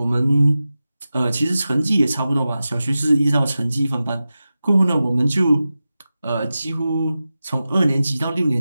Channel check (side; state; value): both; inverted; correlation -0.94